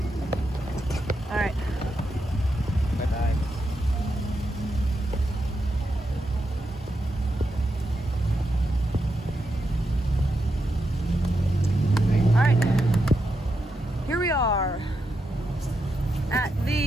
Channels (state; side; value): normal; both; correlation 0.85